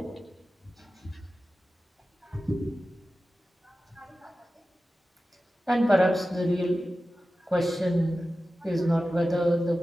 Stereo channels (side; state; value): both; normal; correlation 0.94